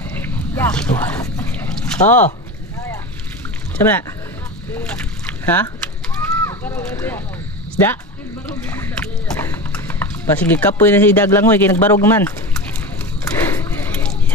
Ito. Oh. Saan na? Ha? Isda? Pasige kapoy na si Daglangoy kaya nagbarog man.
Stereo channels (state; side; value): normal; both; correlation 0.27